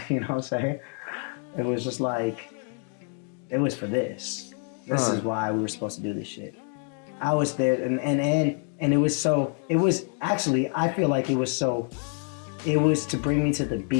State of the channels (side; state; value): right; quieter; 39.6 dB